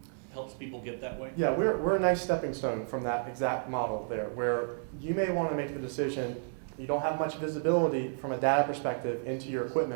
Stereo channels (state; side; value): silent; left; digital silence